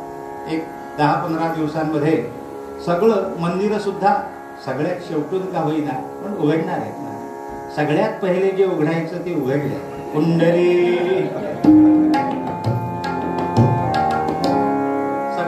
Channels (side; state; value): both; identical; correlation 1.00